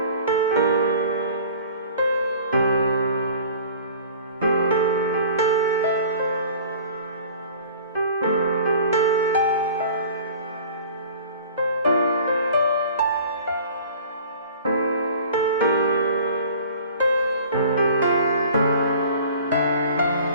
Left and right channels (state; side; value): inverted; both; correlation -0.46